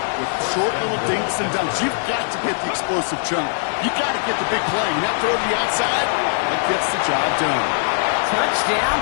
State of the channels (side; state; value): right; silent; digital silence